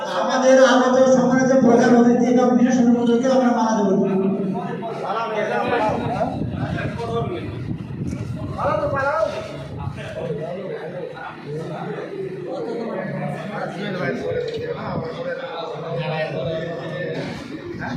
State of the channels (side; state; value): both; identical; correlation 1.00